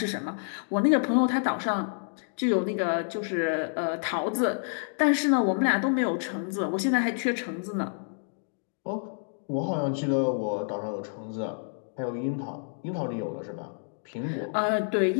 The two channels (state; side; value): silent; right; digital silence